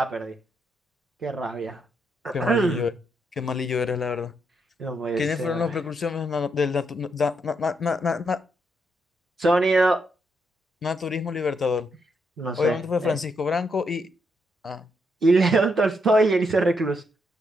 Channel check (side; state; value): both; normal; correlation 0.79